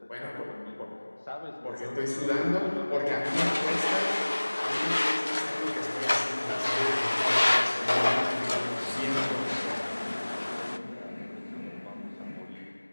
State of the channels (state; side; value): inverted; both; correlation -1.00